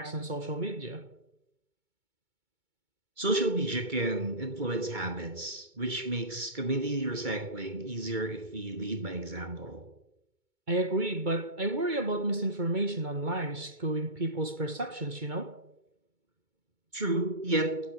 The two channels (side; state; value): left; late; 2.2 ms